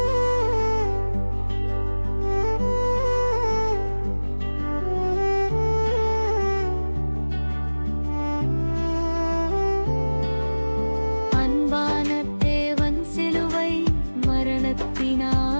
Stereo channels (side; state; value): both; inverted; correlation -1.00